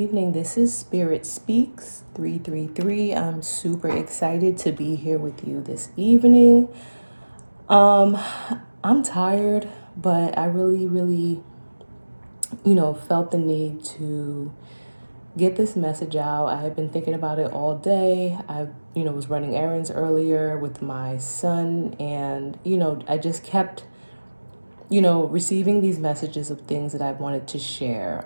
This is Spirit Speaks 333. I'm super excited to be here with you this evening. Um, I'm tired, but I really, felt the need to get this message out. I have been thinking about it all day. I was running errands earlier with my son, and, I just kept receiving these messages of things that I wanted to share.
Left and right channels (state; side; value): inverted; both; correlation -1.00